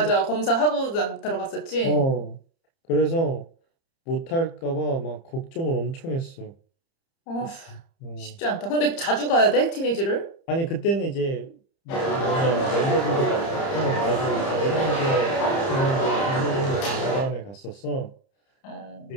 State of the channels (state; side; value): late; right; 30 ms